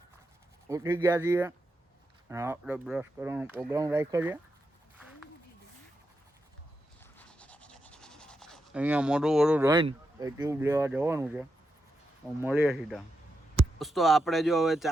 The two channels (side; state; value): both; normal; correlation 0.86